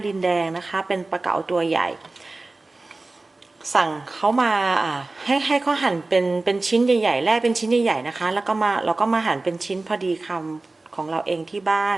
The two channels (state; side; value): quieter; left; 3.3 dB